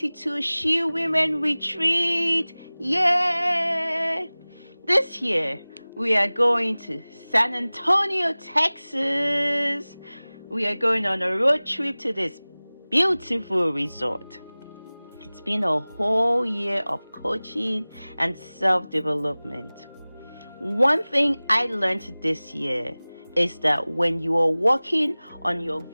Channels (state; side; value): inverted; both; correlation -0.99